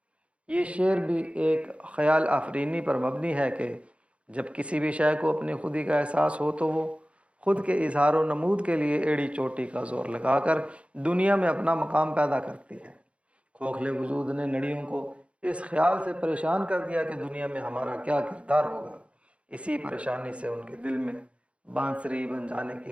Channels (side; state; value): left; late; 0.061 ms